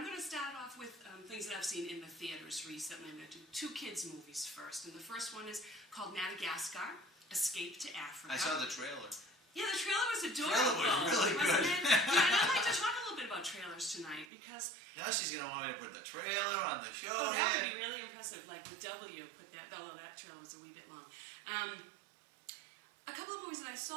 going to start off with things that I've seen in the theaters recently. I'm going to do 2 kids' movies first. And the first one is called Madagascar, Escape to Africa. I saw the trailer. Yeah, the trailer was adorable. The trailer was really good. Yeah, and I'd like to talk a little bit about trailers tonight because... Now she's going to want me to put the trailer on the show. Oh, that would be really impressive. Like the W, although that trailer was a wee bit long. A couple of movies that I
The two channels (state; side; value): drops out; left; at 14.2 s